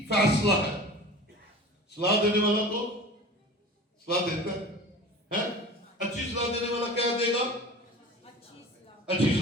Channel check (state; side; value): normal; both; correlation 0.38